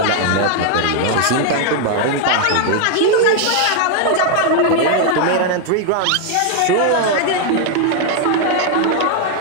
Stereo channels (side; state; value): both; different; correlation 0.00